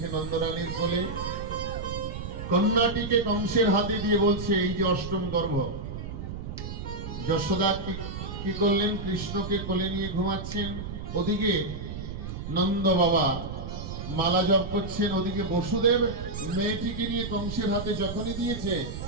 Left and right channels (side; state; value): right; noise; rumble, 7 dB below the sound